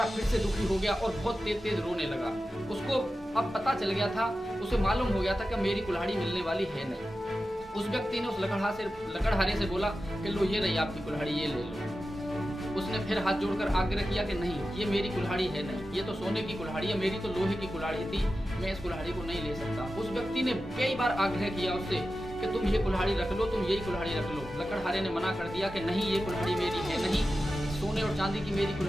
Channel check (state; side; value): normal; both; correlation 0.93